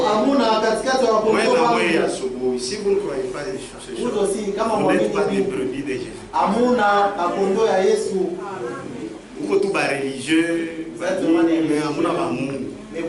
Si vous ne croyez pas des choses, vous n'êtes pas des brebis de Jésus. Vous êtes tous religieux, mais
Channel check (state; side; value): identical; both; correlation 1.00